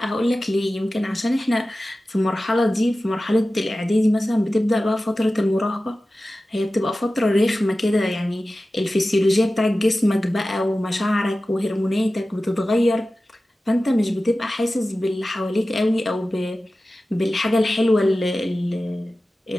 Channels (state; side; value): normal; both; correlation 0.95